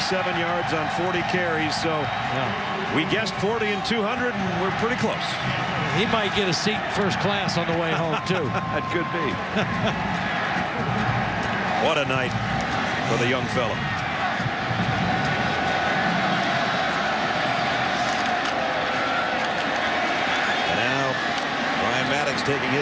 yards on 40 carries. So we guessed 40 and 200, and we're pretty close. He might get a seat first class on the way home, too. It could be. What a night for the young fella. And now Brian Maddox taking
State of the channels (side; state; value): both; identical; correlation 1.00